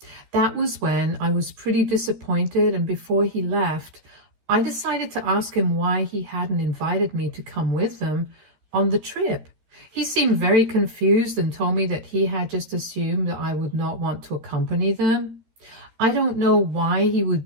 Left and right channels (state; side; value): late; left; 13 ms